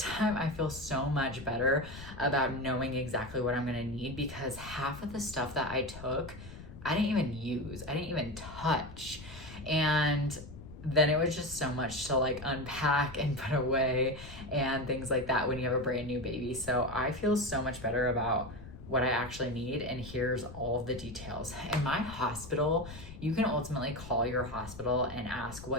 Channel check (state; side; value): noise; left; rumble, 14 dB below the sound